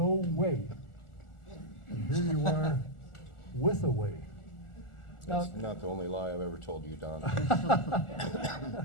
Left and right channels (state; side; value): late; right; 1.4 ms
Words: way. And here you are with a way. Now, That's not the only lie I've ever told you, Don.